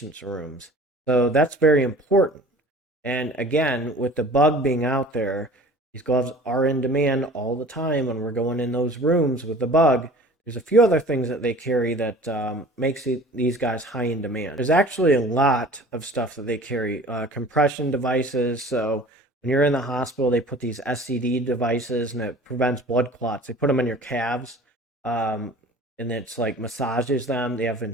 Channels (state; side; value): normal; both; correlation 0.45